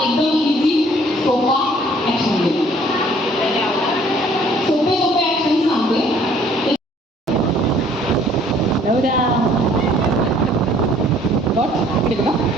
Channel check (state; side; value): normal; both; correlation 0.58